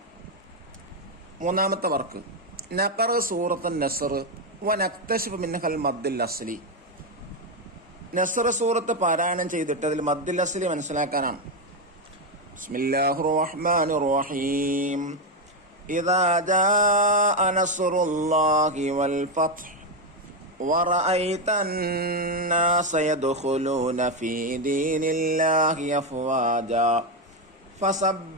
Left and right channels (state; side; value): normal; both; correlation 0.07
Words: മൂന്നാമത്തെ വർക്ക്, നഖറ സൂറത്തുൻ നസ്ർ വ നക്തശിഫു മിൻഹൽ മദ്ദുൽ അസ്ലി. നസ്ർ സൂറത്ത് പാരായണം ചെയ്തിട്ട് അതിൽ മദ്ദുൽ അസ്ലി മനസ്സിലാക്കാനാണ്. ബിസ്മില്ലാഹിർ റഹ്മാനിർ റഹീം. ഇദാ ജാഅ നസ്റുല്ലാഹി വൽ ഫത്ഹ് വറഅയ്ത അന്നാസ യദ്ഖുലൂന ഫീ ദീനില്ലാഹി അഫ്വാജാ